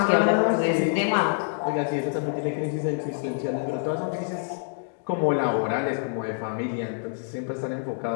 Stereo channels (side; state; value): right; silent; digital silence